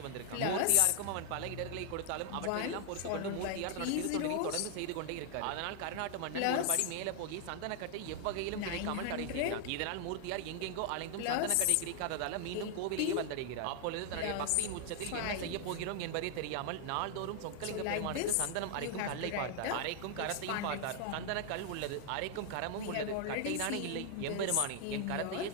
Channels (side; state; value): both; different; correlation 0.00